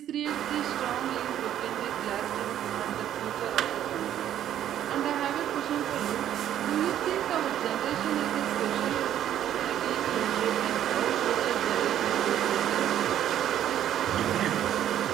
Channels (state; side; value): quieter; left; 11.0 dB